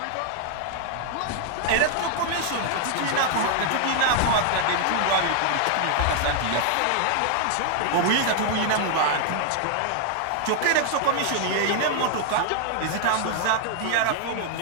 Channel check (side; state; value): both; different; correlation 0.00